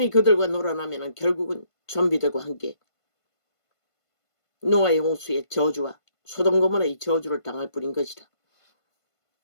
그들과 놀아나면 결국은 좀비들과 함께 노아의 홍수의 저주와 소돔 고모라의 저주를 당할 뿐인 것이라.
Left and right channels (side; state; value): right; late; 1.5 ms